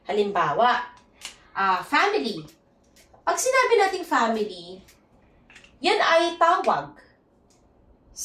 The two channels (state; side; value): identical; both; correlation 1.00